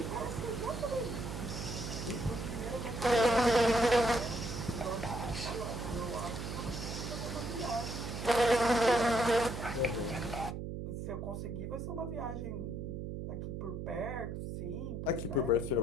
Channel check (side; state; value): right; noise; hum, 5 dB below the sound